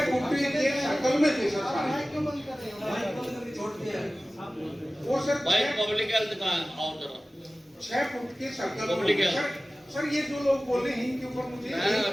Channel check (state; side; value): normal; both; correlation 0.97